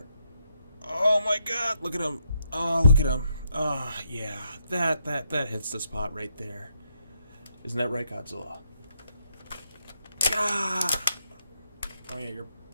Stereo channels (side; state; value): both; inverted; correlation -0.77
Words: Oh my god. Look at him. Oh, look at him. Yeah. That hits the spot right there. Isn't that right, Godzilla? Ah! Oh yeah, your